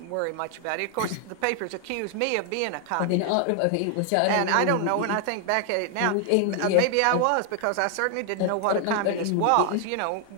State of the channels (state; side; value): different; both; correlation 0.00